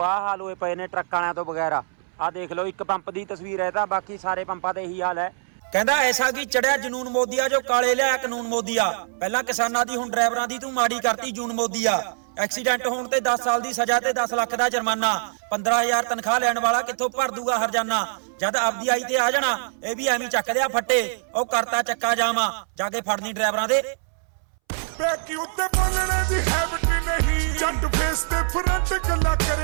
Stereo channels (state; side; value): silent; left; 63 dB below the other